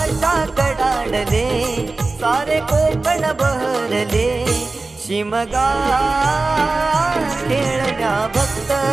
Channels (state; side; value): quieter; left; 3.5 dB